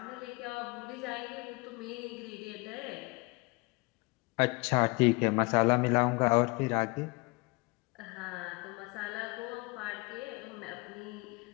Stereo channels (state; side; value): quieter; right; 26.7 dB